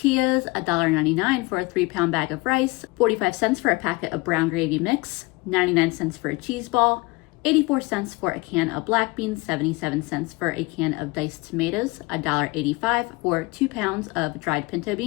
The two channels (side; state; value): right; quieter; 24.5 dB